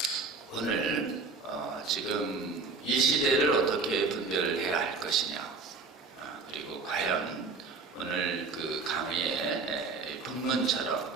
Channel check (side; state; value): left; quieter; 4.3 dB